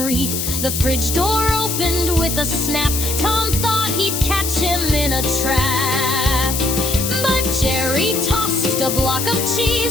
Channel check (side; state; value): left; noise; hiss, 2 dB below the sound